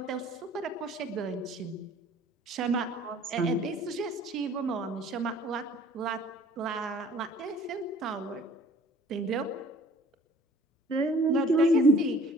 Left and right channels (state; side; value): normal; both; correlation 0.53